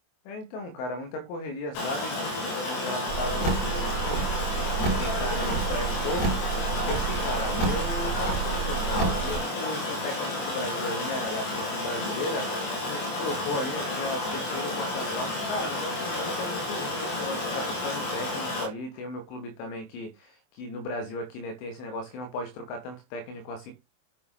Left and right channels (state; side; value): late; right; 24 ms